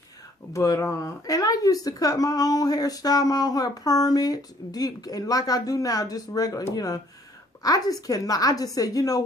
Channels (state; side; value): normal; both; correlation 0.61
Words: But and I used to cut my own hair, style my own hair, perm it, deep, and like I do now, just regular, you know. I just cannot. I just said, you know